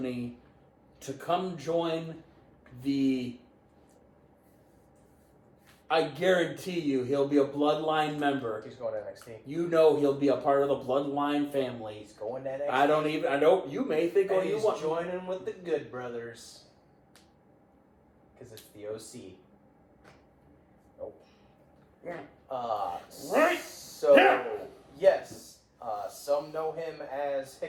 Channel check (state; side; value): identical; both; correlation 1.00